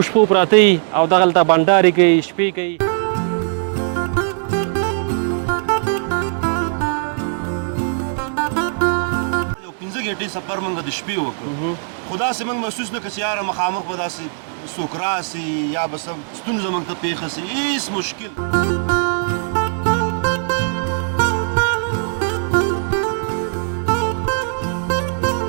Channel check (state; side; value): silent; left; 66 dB below the other